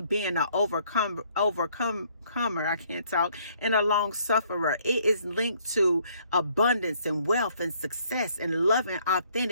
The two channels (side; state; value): both; inverted; correlation -0.65